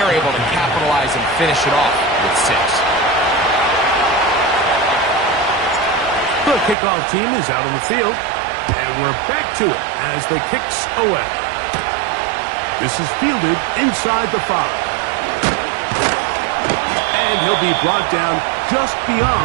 able to capitalize and finish it off with 6. The kickoff team is out on the field, and we're back to it as the kick's away. This is fielded inside the 5. And he'll be brought down just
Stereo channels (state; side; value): drops out; left; at 6.8 s